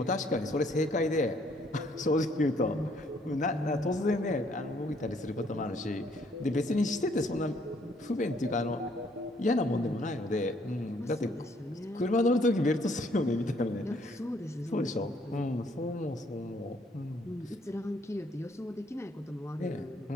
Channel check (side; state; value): both; normal; correlation 0.66